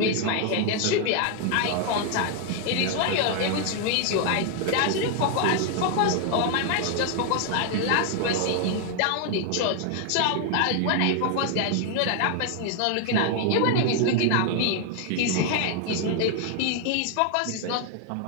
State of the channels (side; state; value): both; different; correlation 0.00